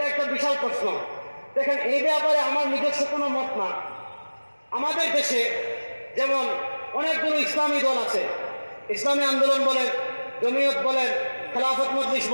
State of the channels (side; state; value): both; inverted; correlation -1.00